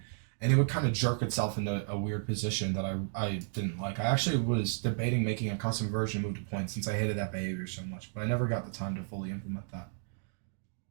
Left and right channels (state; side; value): silent; left; digital silence